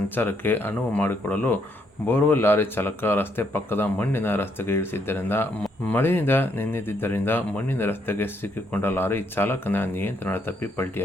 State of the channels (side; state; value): both; normal; correlation 0.73